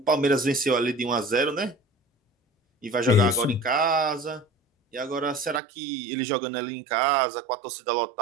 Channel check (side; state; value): left; drops out; at 5.6 s